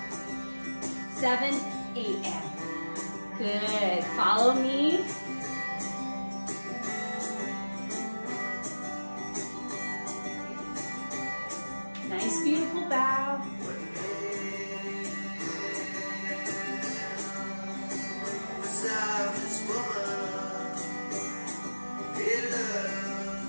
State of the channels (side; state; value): both; inverted; correlation -1.00